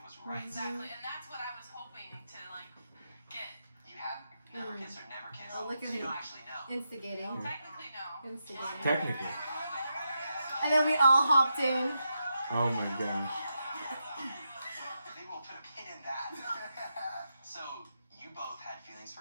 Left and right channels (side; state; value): both; inverted; correlation -0.86